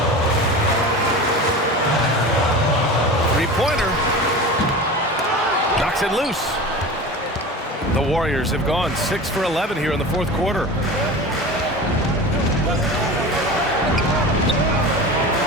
Three-pointer. Knocks it loose. The Warriors have gone 6 for 11 here in the fourth quarter.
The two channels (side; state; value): both; normal; correlation 0.32